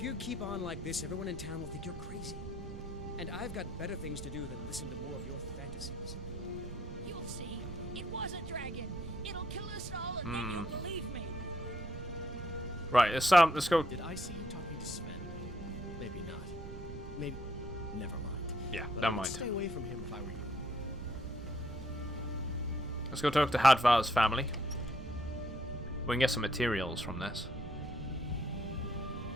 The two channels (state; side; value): noise; right; rumble, 10 dB below the sound